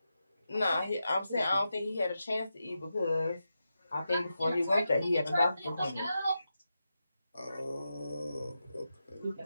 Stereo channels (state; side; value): inverted; both; correlation -0.89